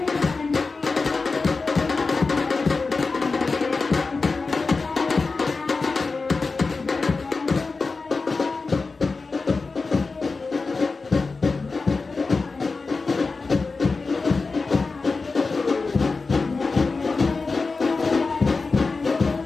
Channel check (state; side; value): quieter; right; 4.1 dB